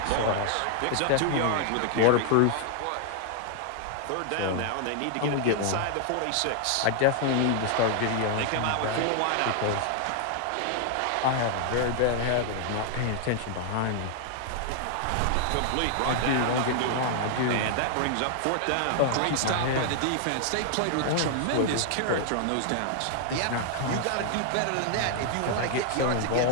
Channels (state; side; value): different; both; correlation 0.00